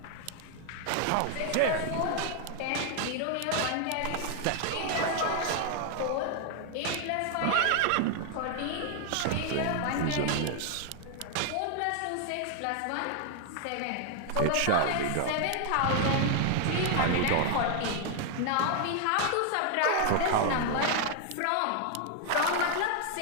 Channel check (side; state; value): both; different; correlation 0.00